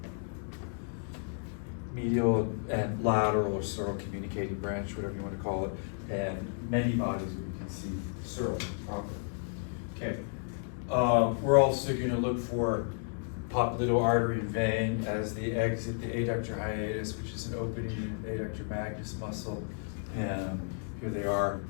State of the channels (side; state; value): right; silent; 56 dB below the other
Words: medial and lateral or sural communicating branch, whatever you want to call it, and many bodies where you can see sural proper. Okay. We're also going to look for popliteal artery and vein as they exit the adductor hiatus, which is an opening in the adductor magnus muscle. And here they are.